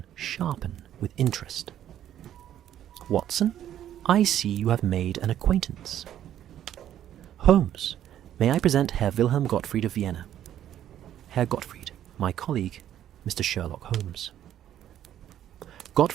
sharpen with interest. "Watson, I see you have made an acquaintance." "Holmes, may I present Herr Wilhelm Gottfried of Vienna. Herr Gottfried, my colleague, Mr. Sherlock Holmes."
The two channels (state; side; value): quieter; left; 11.1 dB